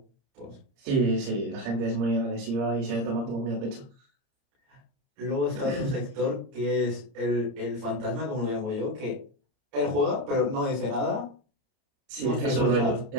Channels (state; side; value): late; left; 30 ms